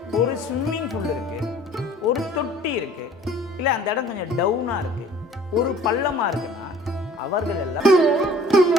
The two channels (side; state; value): both; normal; correlation 0.51